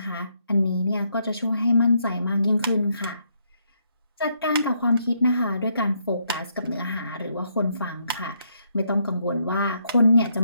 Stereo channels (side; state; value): both; inverted; correlation -0.75